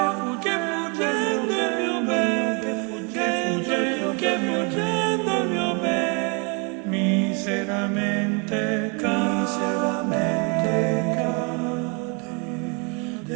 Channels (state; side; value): quieter; left; 33.8 dB